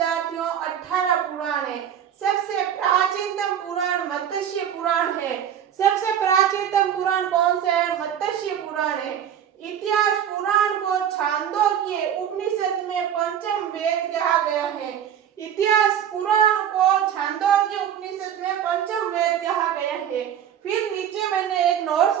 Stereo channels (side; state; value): left; quieter; 9.4 dB